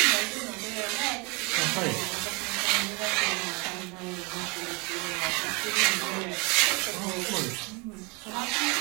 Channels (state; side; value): quieter; left; 29.9 dB